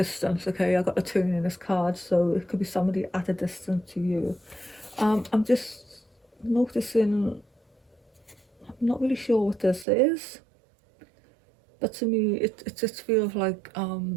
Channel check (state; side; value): drops out; left; at 9.9 s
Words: okay. I got a turn in this card, so it could be somebody at a distance to you. I'm just noticing, I'm not really sure what this is, but to me it just feels like